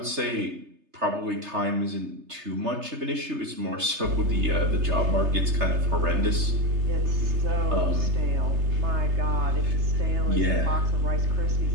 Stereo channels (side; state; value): left; late; 3.3 ms